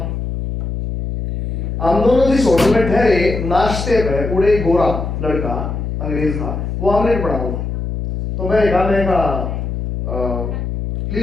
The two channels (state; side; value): noise; left; hum, 4 dB below the sound